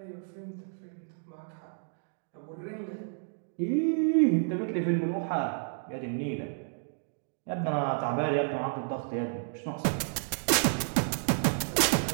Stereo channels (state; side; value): silent; left; digital silence